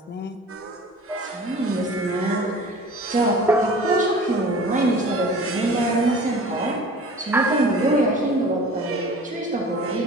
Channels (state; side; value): normal; both; correlation 0.42